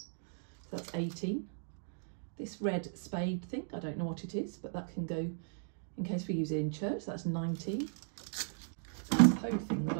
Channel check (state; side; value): silent; left; digital silence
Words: So that's 18. This red spade thing, I don't know what it is, but that can go in case we use it in church. That's 19. This hoe thing that